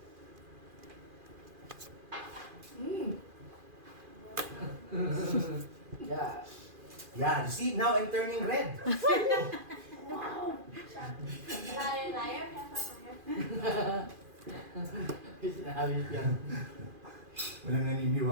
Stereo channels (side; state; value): left; late; 2.4 ms